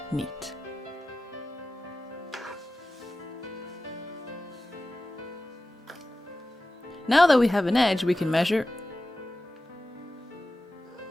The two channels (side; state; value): both; normal; correlation 0.95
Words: neat. Now that we have an edge we can measure,